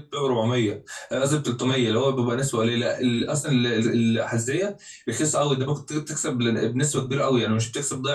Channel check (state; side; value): identical; both; correlation 1.00